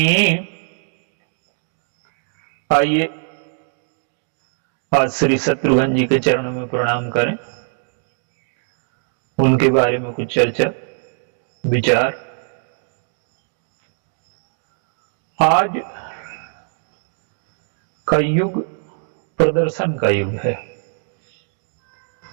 आइए आज श्री शत्रुघ्न जी के चरणों में प्रणाम करें, उनके बारे में कुछ चर्चा विचार। आज का युग प्रदर्शन का युग है।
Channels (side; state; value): left; silent; 64 dB below the other